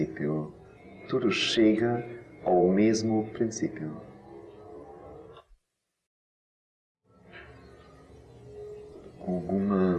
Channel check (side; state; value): both; identical; correlation 1.00